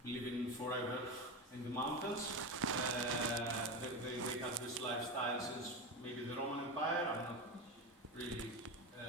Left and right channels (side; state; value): both; normal; correlation 0.19